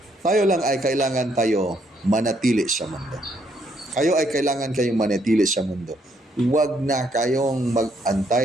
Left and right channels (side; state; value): both; normal; correlation 0.71